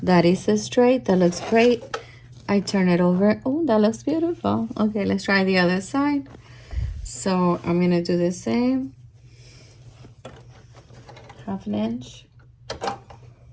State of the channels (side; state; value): both; identical; correlation 1.00